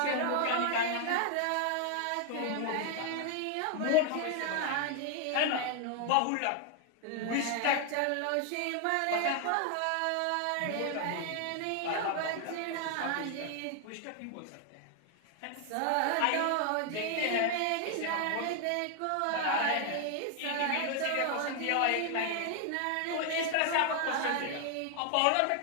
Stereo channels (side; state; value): both; different; correlation 0.00